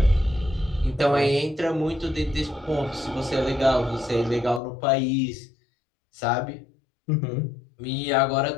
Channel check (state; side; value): drops out; right; at 4.6 s